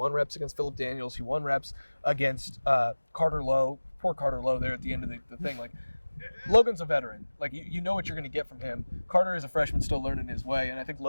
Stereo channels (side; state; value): both; inverted; correlation -1.00